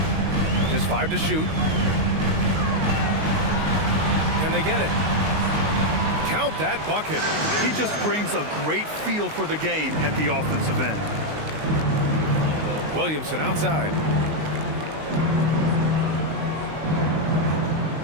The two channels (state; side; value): late; left; 19 ms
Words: Just 5 to shoot. Can they get it? Count that bucket. He just brings a great feel for the game at the offensive end. Williamson outside.